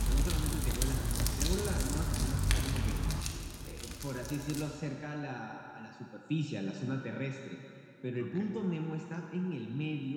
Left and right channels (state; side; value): identical; both; correlation 1.00